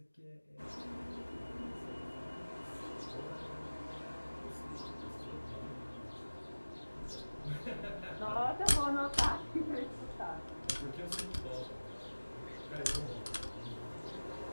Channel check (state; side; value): inverted; both; correlation -1.00